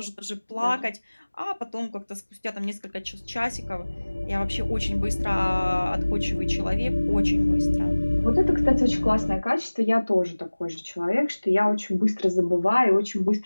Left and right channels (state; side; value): inverted; both; correlation -1.00